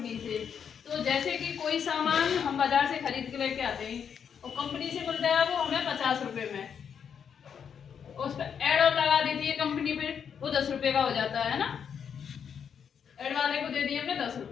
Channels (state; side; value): quieter; right; 7.5 dB